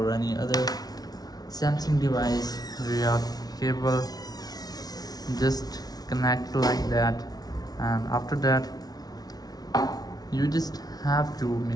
any other Samsung device via cable. Just connect like that, and after that you just have to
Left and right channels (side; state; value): right; late; 0.19 ms